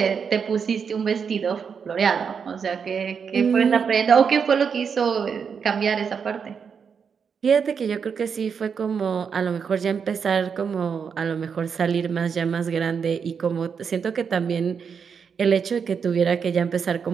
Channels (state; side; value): quieter; left; 6.4 dB